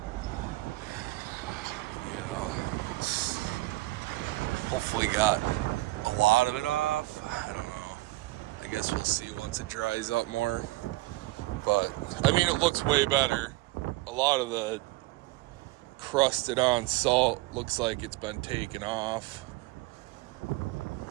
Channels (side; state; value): left; quieter; 20.1 dB